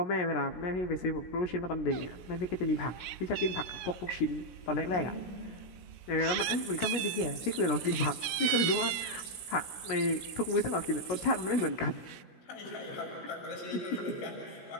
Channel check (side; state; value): right; late; 16 ms